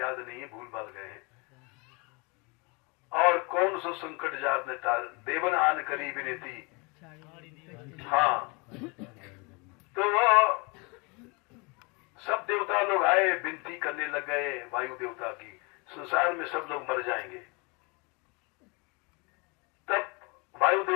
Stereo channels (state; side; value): quieter; right; 29.7 dB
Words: नहीं है, भूल भाल गए हैं। और कौन सो संकट जात ने टाल, देवन आन करी विनती। हाँ, तो वो सब देवता लोग आए, विनती करने लग गए वायु देवता की, संसार में सब लोग मर जाएंगे। तब वायु